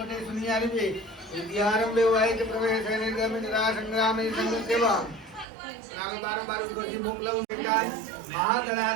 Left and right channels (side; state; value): left; drops out; at 5.5 s